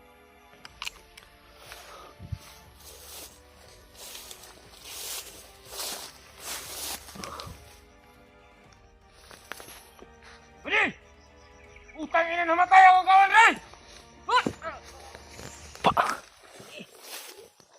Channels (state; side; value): identical; both; correlation 1.00